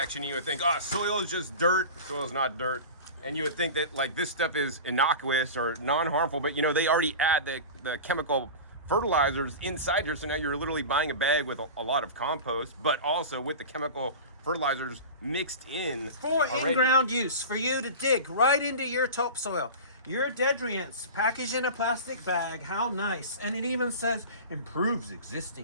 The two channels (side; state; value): both; inverted; correlation -0.31